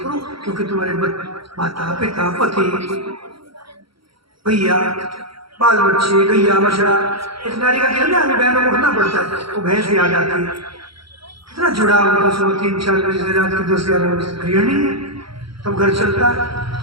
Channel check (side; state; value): left; late; 0.75 ms